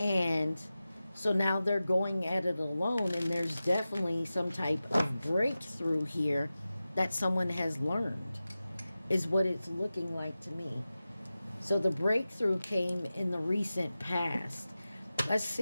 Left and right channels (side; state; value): both; inverted; correlation -0.95